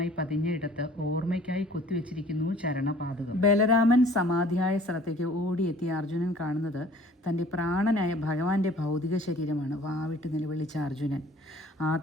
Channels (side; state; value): both; normal; correlation 0.51